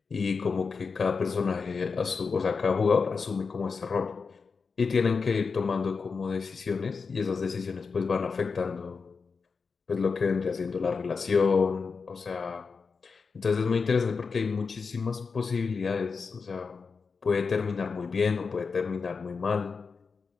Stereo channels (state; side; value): quieter; right; 5.0 dB